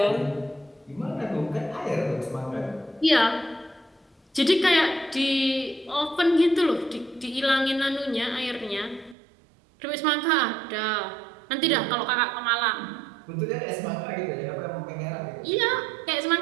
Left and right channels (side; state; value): left; drops out; at 9.2 s